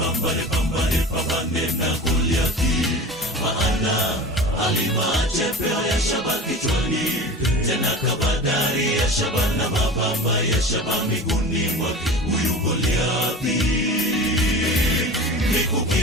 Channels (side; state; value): both; normal; correlation 0.34